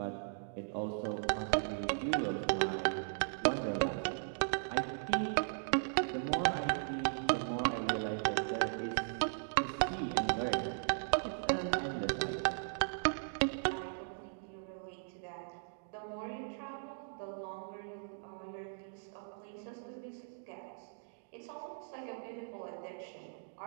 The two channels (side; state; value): left; silent; digital silence